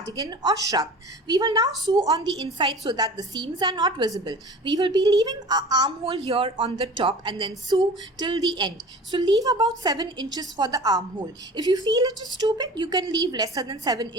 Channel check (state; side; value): normal; both; correlation 0.40